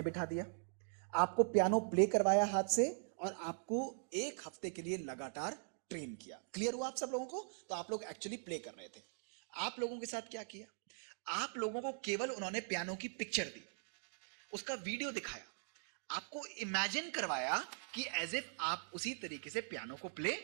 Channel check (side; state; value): left; silent; digital silence